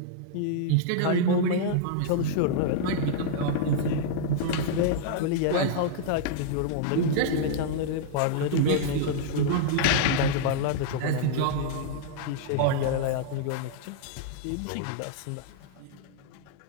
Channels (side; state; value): both; different; correlation -0.01